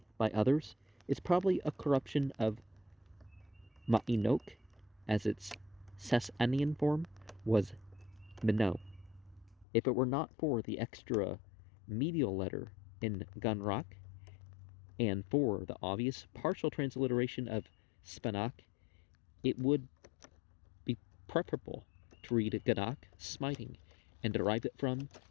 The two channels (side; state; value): right; drops out; at 9.7 s